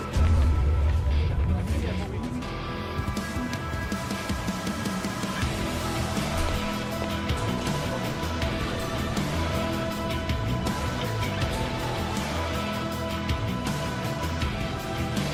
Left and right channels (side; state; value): both; identical; correlation 1.00